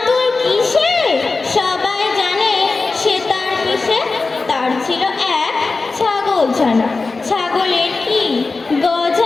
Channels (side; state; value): right; quieter; 3.8 dB